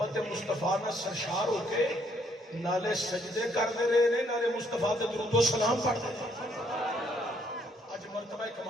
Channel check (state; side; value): normal; both; correlation 0.68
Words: مصطفیٰ نال سرشار ہو کے نالے سجدے کردے رہے نے نالے مصطفیٰ تے درود و سلام پڑھدے اج مرتبہ